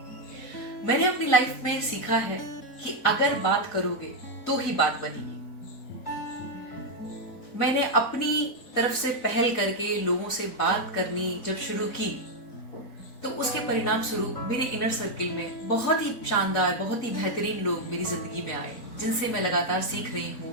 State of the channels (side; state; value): right; late; 4.1 ms